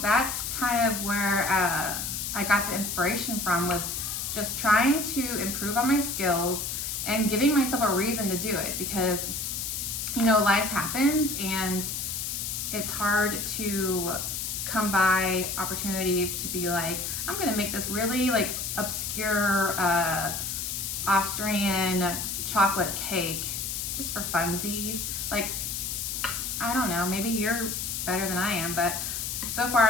that's kind of where I got the inspiration from, was just trying to improve on my skills and giving myself a reason to do it, because you know, life happens and it's hard to come by opportunities to be like, I'm gonna make this really like obscure Austrian chocolate cake just for funsies. Like, I don't know, maybe you're better than I am, but so far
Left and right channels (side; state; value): left; noise; hiss, 3 dB below the sound